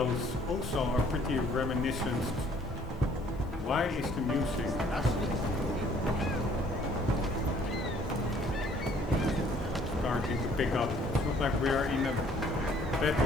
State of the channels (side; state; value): both; normal; correlation 0.59